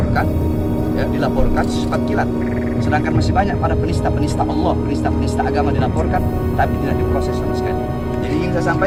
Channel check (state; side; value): identical; both; correlation 1.00